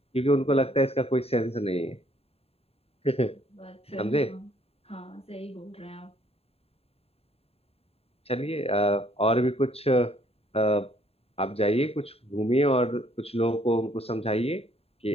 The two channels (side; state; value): right; late; 0.29 ms